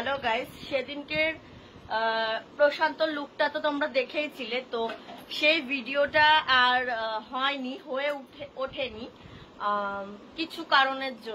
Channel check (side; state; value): both; identical; correlation 1.00